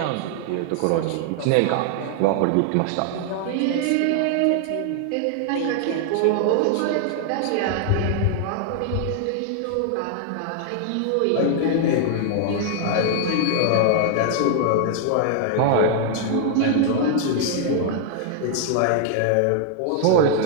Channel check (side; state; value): both; different; correlation 0.00